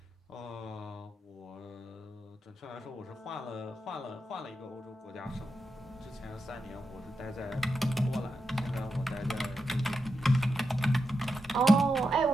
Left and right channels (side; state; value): both; normal; correlation 0.87